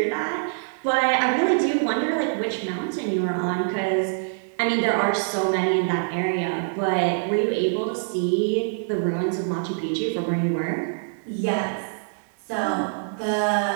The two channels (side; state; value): left; silent; digital silence